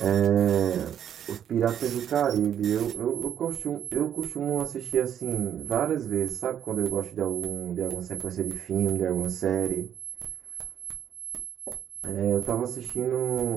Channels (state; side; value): quieter; left; 9.5 dB